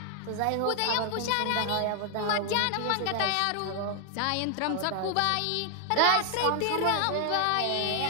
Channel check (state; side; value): different; both; correlation 0.00